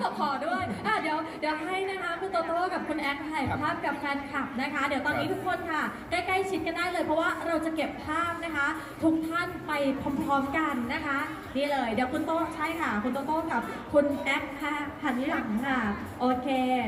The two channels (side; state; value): both; identical; correlation 1.00